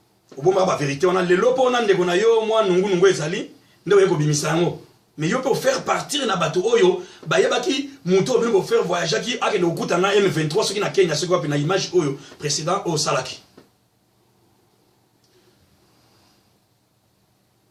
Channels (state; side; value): identical; both; correlation 1.00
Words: Obomba ba vérité wana. Le lopo on a de Gonayo, moi, Nungu Ezali, Nde Eko Bimisango. Mais yo peut faire partir na bateau oyo, ba yebaki muto bien faire voyager qui a que no Koutana M23, ceux qui na Kenya, ceux qui ont na image oyo précédent au Salaki.